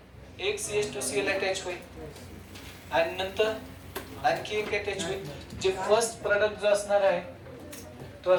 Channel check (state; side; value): identical; both; correlation 1.00